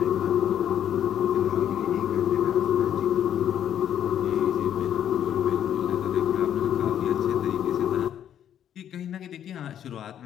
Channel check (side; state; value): right; quieter; 10.0 dB